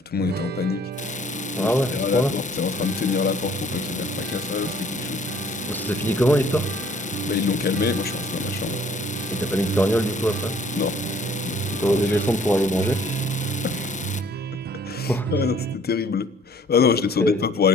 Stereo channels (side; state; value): both; normal; correlation 0.57